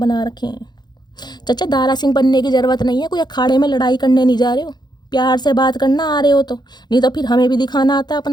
रखे हैं। चाचा दारा सिंह बनने की ज़रूरत नहीं है, कोई अखाड़े में लड़ाई करने नहीं जा रहे हो, प्यार से बात करना आ रहे हो तो, नहीं तो फिर हमें भी दिखाना आता है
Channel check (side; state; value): right; late; 0.21 ms